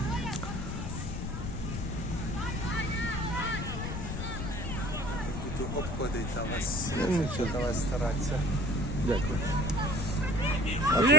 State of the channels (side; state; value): left; noise; rumble, 4 dB below the sound